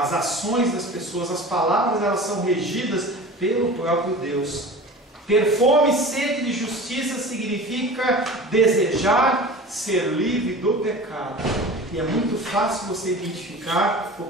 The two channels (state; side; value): normal; both; correlation 0.37